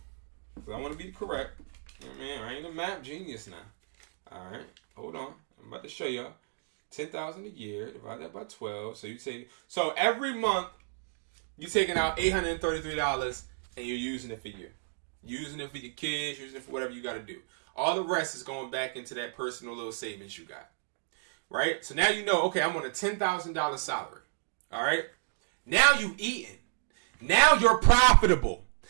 want to be correct. Man, I ain't a math genius now. All right, hold on. I'm about to show y'all. $10,000 a year, divide that by 12. So you take, so every month you're taking out $833 and you're using it for you. Using it for your kids, using it for whatever you got to do. All the rest is going back into that personal little savings you got. Right? So now you know, okay, I'm on a $10,000 salary. All right? Now you eating. Now you're profitable.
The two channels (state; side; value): silent; left; digital silence